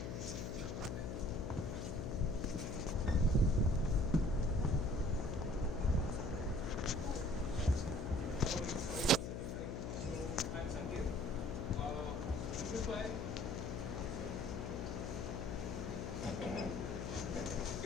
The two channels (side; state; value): left; noise; hum, 4 dB below the sound